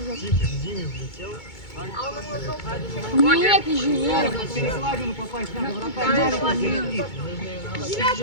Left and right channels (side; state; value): right; late; 2.2 ms